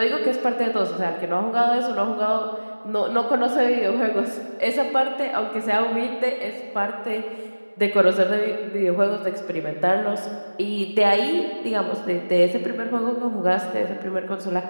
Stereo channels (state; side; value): inverted; both; correlation -1.00